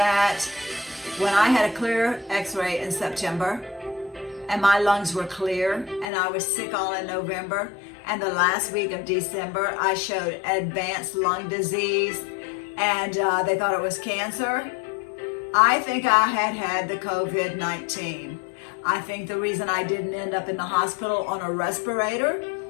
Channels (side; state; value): right; drops out; at 6.1 s